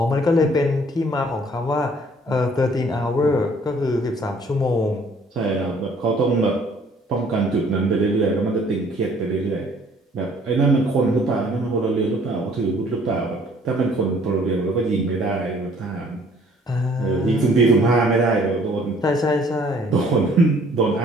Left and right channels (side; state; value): both; normal; correlation 0.58